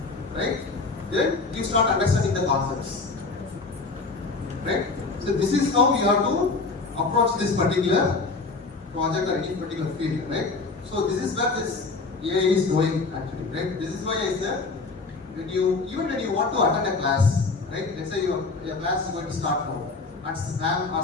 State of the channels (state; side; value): quieter; right; 3.9 dB